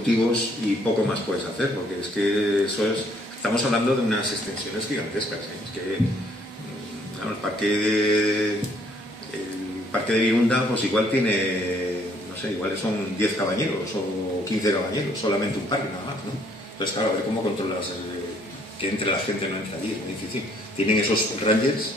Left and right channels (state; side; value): normal; both; correlation 0.64